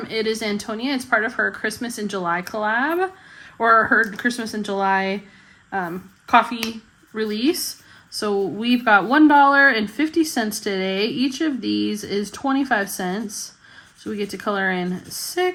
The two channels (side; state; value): both; identical; correlation 1.00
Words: It Is Antonia. It's part of her Christmas in July collab, or her Christmas in July coffee release. So we've got $1.50 today. Each of these is 25 cents. So we get to color in